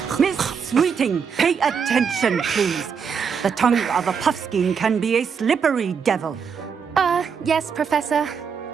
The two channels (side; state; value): left; quieter; 6.4 dB